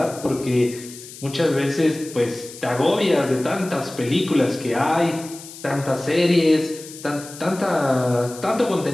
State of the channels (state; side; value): noise; left; hiss, 15 dB below the sound